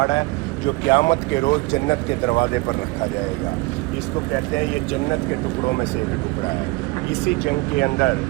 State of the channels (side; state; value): left; quieter; 23.3 dB